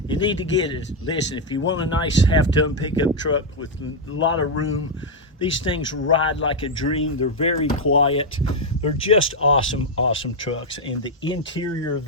need to get it. Listen, if you want a nice half-ton pickup truck with a lot of room, These things ride like a dream. They're very quiet. They're just awesome, awesome trucks. And the interior of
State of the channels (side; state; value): both; normal; correlation 0.01